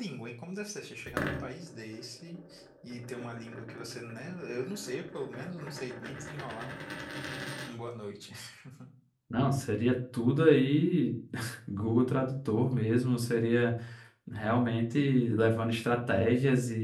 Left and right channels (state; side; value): identical; both; correlation 1.00